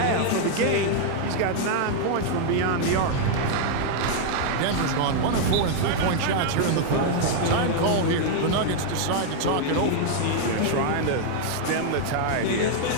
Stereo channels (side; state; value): both; different; correlation 0.00